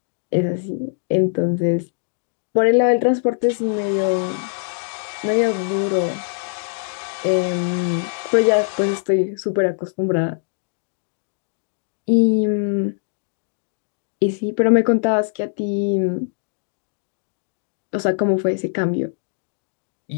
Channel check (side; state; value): right; silent; digital silence